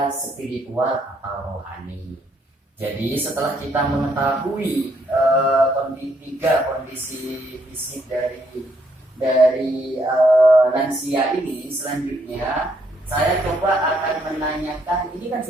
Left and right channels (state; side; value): normal; both; correlation 0.72